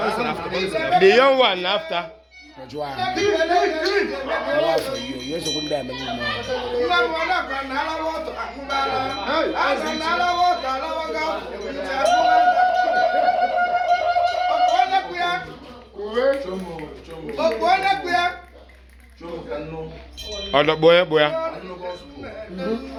The young one after. Yes, Other boy, boy.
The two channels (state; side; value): identical; both; correlation 1.00